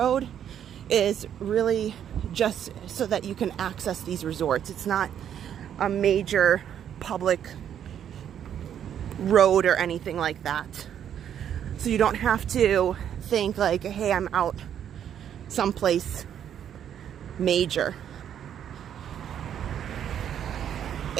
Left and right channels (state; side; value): quieter; left; 9.5 dB